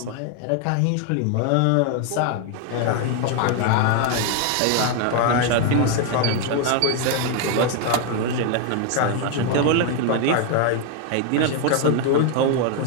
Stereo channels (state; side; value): different; both; correlation 0.01